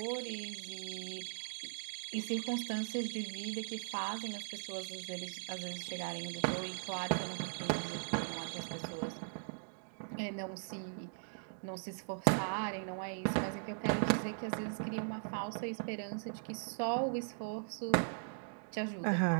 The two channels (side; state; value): left; silent; digital silence